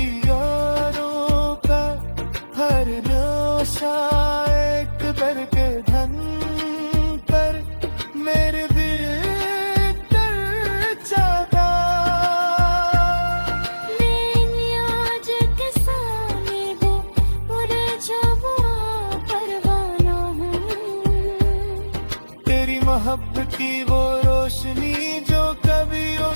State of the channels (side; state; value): both; inverted; correlation -1.00